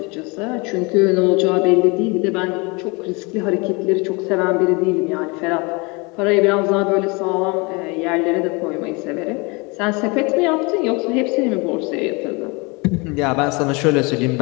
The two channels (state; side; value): quieter; right; 28.3 dB